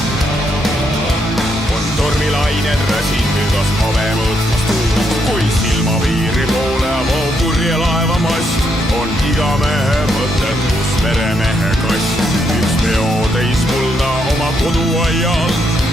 On tormilained räsin hügas have mõõtmas tuul. Kui silmapiiri poole voo purje laeva mast, on iga mehe mõtted, kus veremehe kast. Üks peotäis kulda oma koduaial,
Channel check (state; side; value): normal; both; correlation 0.77